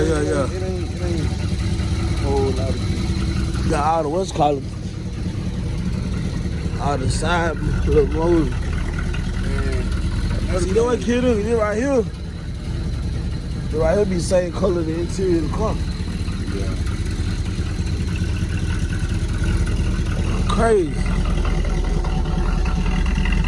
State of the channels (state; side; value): identical; both; correlation 1.00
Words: It ain't a whole lot of shit. You got all the what's called all the side little motors. See, you know what kid is? This right here. This right here be the same color the interior of the car. Yeah. Crazy.